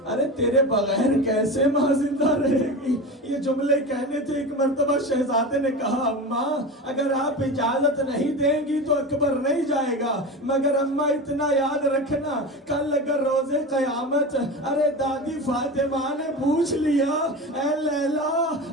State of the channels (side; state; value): both; normal; correlation 0.27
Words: ارے تیرے بغیر کیسے ماں زندہ رہے گی. یہ جملے کہنے تھے. ایک مرتبہ شہزادے نے کہا اماں اگر آپ اجازت نہیں دیں گی تو اکبر نہیں جائے گا, مگر اماں اتنا یاد رکھنا کل اگر روز قیامت ارے دادی فاطمہ نے پوچھ لیا اے لیلا